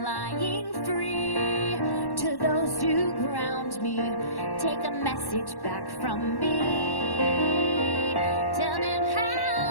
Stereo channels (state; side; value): late; right; 1.1 ms